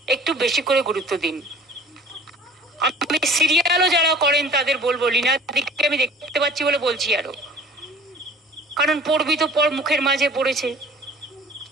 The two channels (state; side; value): normal; both; correlation 0.48